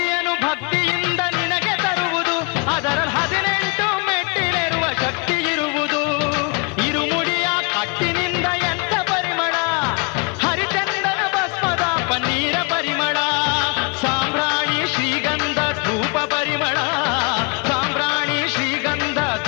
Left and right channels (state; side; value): quieter; right; 32.4 dB